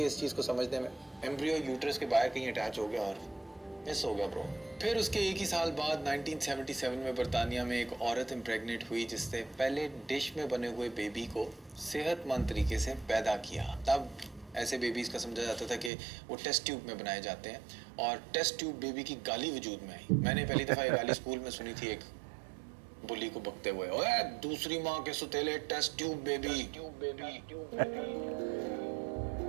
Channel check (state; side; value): drops out; left; at 15.9 s